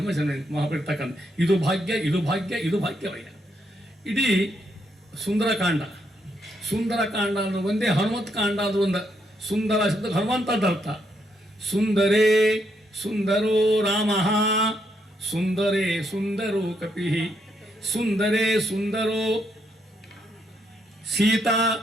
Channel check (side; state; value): both; normal; correlation 0.77